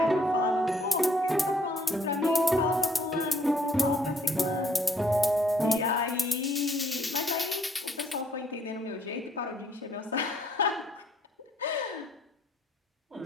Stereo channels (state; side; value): normal; both; correlation 0.66